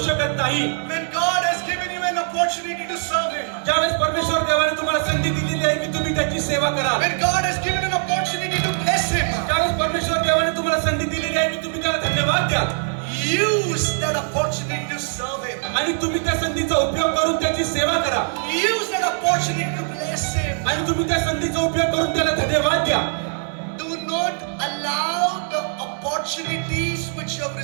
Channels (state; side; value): silent; left; digital silence